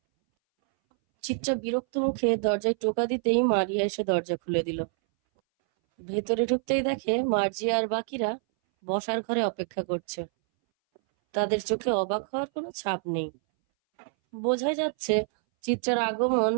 চিত্রা বিরক্ত মুখে দরজায় টোকা দিতেই মারিয়া এসে দরজা খুলে দিল। ভেতরে ঢুকতেই দেখে মার্জিয়া আর বাকিরা বসার ঘরে অপেক্ষা করছে। তাদের চোখে অবাক হওয়ার কোনো ছাপ নেই। বোঝাই যাচ্ছে চিত্রার আগমন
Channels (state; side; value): silent; left; 60 dB below the other